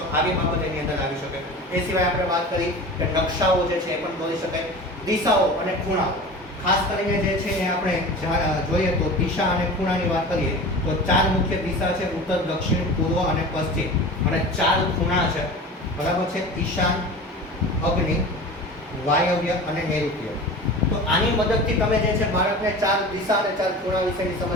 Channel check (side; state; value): both; normal; correlation 0.35